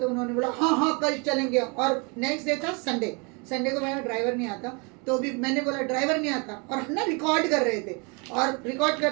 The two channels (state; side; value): quieter; left; 32.0 dB